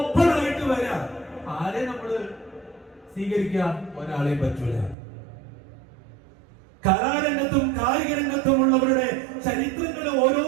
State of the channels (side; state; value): left; drops out; at 5.0 s